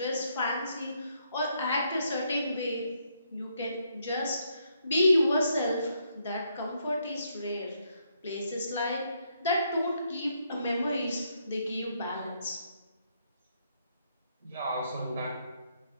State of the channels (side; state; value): both; inverted; correlation -0.75